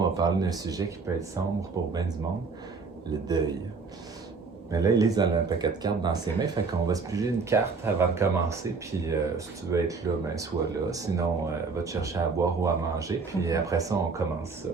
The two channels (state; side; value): quieter; left; 4.6 dB